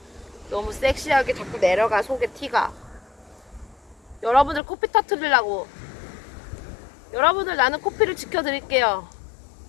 너무 섹시하게 자꾸 내려가. 속에 티가. 여러분들 코피 터트리려고. 여러분들 나는 코피를 지켜드릴게요.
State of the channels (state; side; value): drops out; right; at 4.6 s